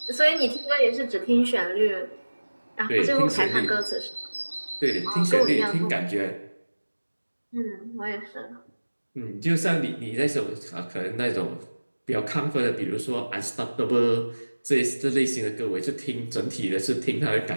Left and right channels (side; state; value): both; inverted; correlation -1.00